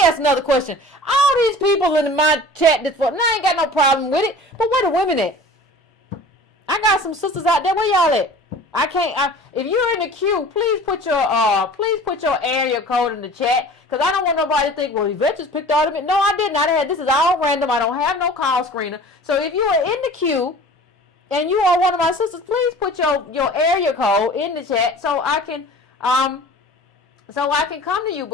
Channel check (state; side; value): normal; both; correlation 0.43